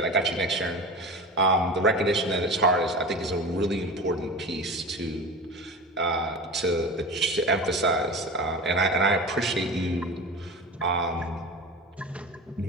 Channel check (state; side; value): normal; both; correlation 0.30